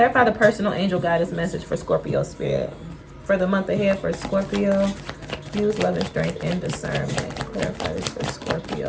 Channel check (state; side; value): identical; both; correlation 1.00